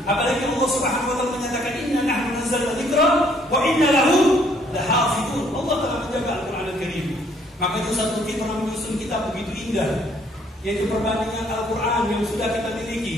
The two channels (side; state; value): both; normal; correlation 0.64